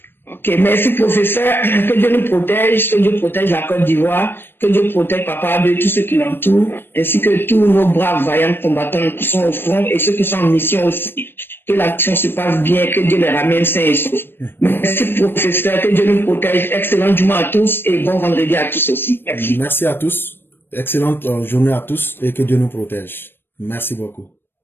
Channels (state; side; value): late; right; 0.10 ms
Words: Ok, merci professeur. Que Dieu nous protège, que Dieu protège la Côte d'Ivoire, que Dieu protège Papa de tous ceux qui l'entourent, ainsi que tous nos braves vaillants combattants qui sont au front et ceux qui sont en mission aussi. Que l'action se passe bien, que Dieu les ramène sains et saufs. Merci professeur, que Dieu nous protège. Excellent journée à tous et bon vendredi à tous aussi. Merci. Merci à tous. Excellente journée à tous et que Dieu nous protège. Merci beaucoup.